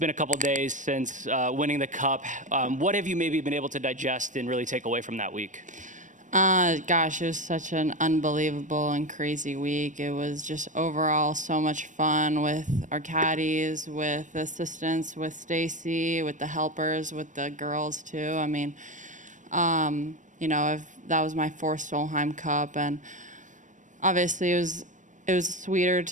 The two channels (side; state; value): left; late; 0.37 ms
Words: a couple days since winning the Cup. What have you maybe been able to digest and really take away from that week? Gosh, it was such an unbelievable and crazy week. It was just overall so much fun with our caddies, with the assistants, with Stacy, with the helpers, with the girls too. I mean, that was my fourth Solheim Cup, and obviously it was sweeter